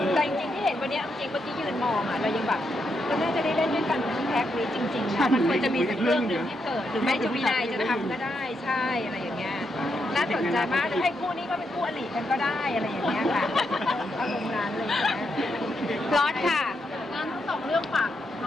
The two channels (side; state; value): both; normal; correlation 0.81